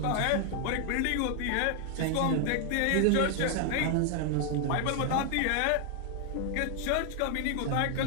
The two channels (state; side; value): different; both; correlation 0.00